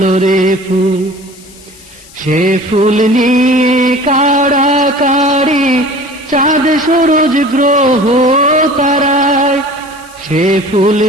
রে ফুল। সে ফুল নিয়ে কাড়াকাড়ি চাঁদ সূরজ গ্রহ তারায়, সে ফুল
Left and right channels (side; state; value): left; noise; hiss, 23 dB below the sound